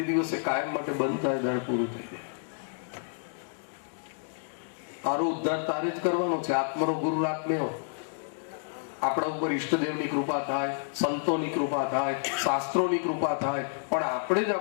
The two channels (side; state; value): right; silent; digital silence